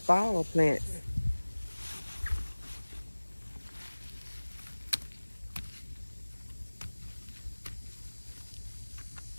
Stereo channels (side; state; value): both; inverted; correlation -1.00